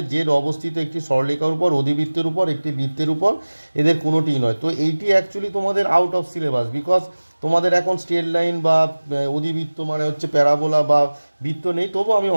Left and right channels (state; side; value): inverted; both; correlation -1.00